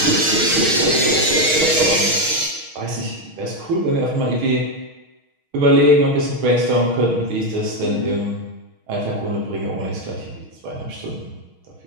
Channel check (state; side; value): late; left; 6.4 ms